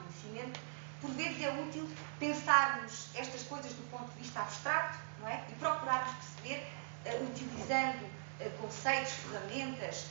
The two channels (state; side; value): silent; left; digital silence